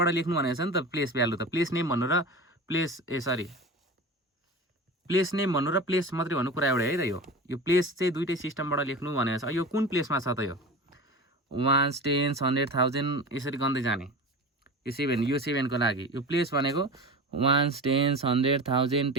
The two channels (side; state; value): both; normal; correlation 0.31